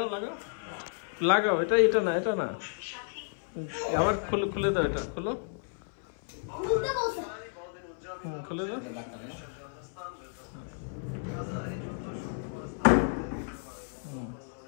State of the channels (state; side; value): silent; right; 57 dB below the other